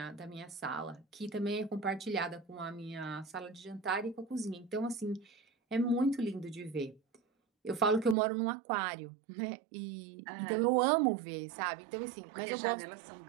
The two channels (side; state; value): left; drops out; at 8.2 s